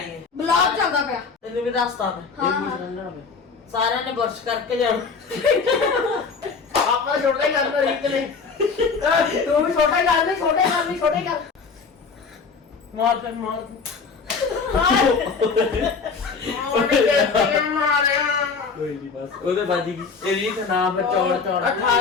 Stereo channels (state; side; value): quieter; right; 5.1 dB